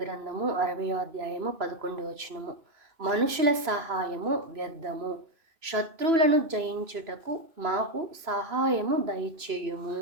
గ్రంథము 60వ అధ్యాయము 11. మనుషుల సహాయము వ్యర్థము, శత్రువులను జయించుటకు మాకు సహాయము దయచేయుము.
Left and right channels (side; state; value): left; late; 3.0 ms